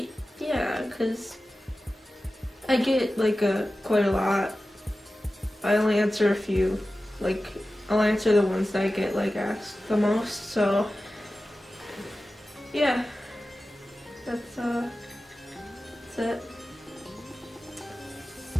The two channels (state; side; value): normal; both; correlation 0.95